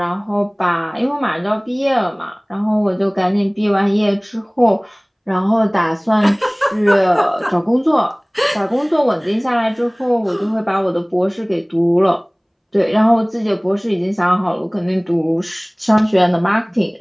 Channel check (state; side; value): identical; both; correlation 1.00